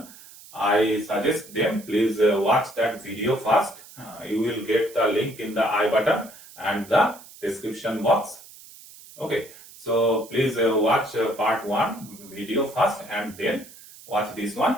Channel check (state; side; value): noise; right; hiss, 20 dB below the sound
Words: I suggest them please watch that video first. You will get the link in the I button and the description box. Okay, so please watch part 1 video first and then watch this one